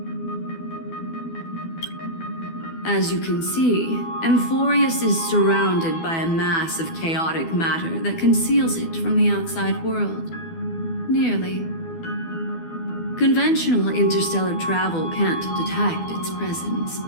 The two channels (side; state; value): right; late; 12 ms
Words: As you can see, Amphorius is surrounded by a mass of chaotic matter that conceals it from the outside world. Nearly. Conventional interstellar travel can't detect its presence,